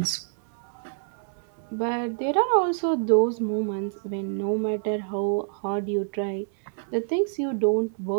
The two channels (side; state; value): left; silent; 60 dB below the other